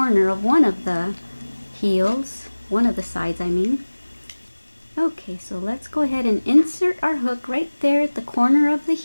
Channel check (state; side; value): inverted; both; correlation -1.00